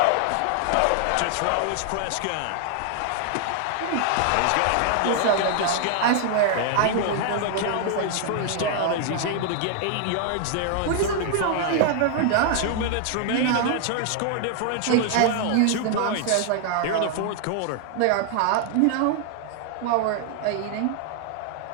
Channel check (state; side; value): different; both; correlation 0.00